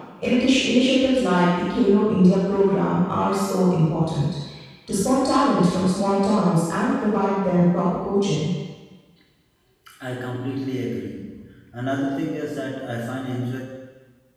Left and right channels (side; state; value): both; identical; correlation 1.00